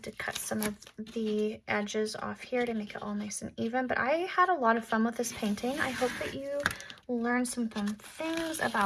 to cut some of the edges off here to make it all nice and even, but I had a lot of fun with this painting. I hope that you learned some fun things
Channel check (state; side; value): identical; both; correlation 1.00